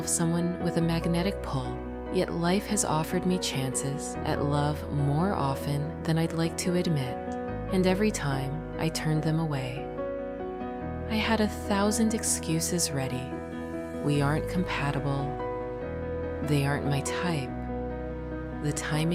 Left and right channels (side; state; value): both; identical; correlation 1.00